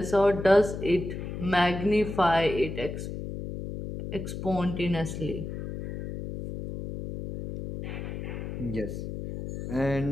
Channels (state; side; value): noise; left; hum, 7 dB below the sound